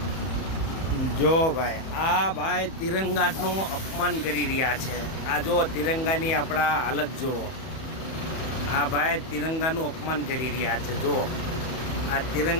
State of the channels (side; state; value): right; late; 31 ms